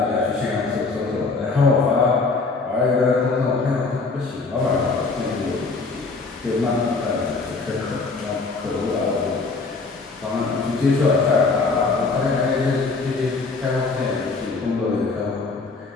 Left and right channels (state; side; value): quieter; right; 4.0 dB